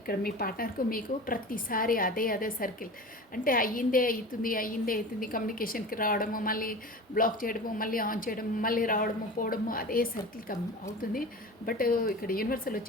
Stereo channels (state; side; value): normal; both; correlation 0.34